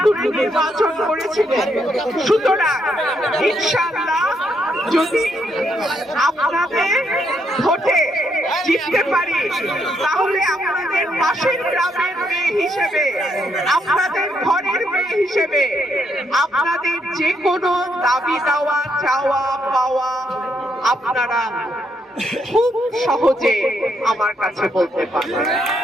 নির্বাচন করেছিলেন। সুতরাং ইনশাআল্লাহ যদি আপনাদের ভোটে জিততে পারি তাহলে আপনাদের পাশের গ্রামের মেয়ে হিসেবে, আপনাদের ঘরের মেয়ে হিসেবে আপনাদের যে কোনো দাবি দেওয়া, চাওয়া পাওয়া আপনারা খুব সহজে আমার কাছে বলতে পারেন।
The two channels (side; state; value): both; normal; correlation 0.76